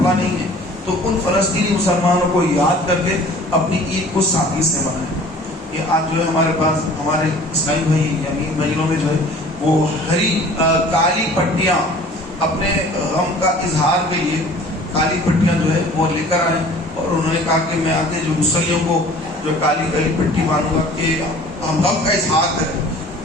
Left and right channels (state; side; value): normal; both; correlation 0.48